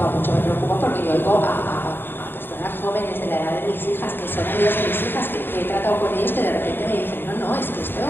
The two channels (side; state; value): right; late; 0.10 ms